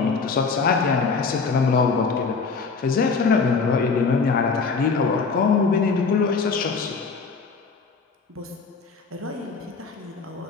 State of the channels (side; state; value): right; quieter; 4.8 dB